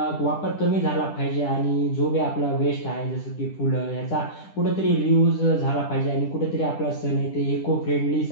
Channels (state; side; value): late; right; 10 ms